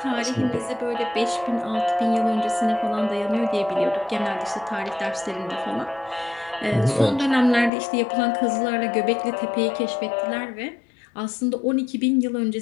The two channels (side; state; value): right; drops out; at 7.7 s